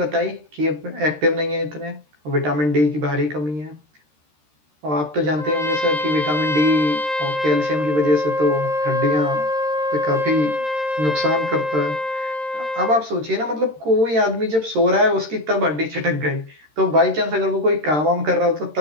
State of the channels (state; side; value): late; left; 13 ms